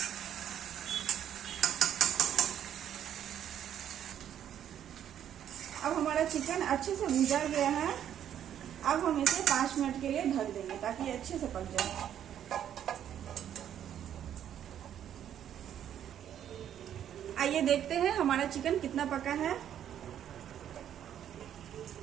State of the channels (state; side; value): quieter; left; 10.1 dB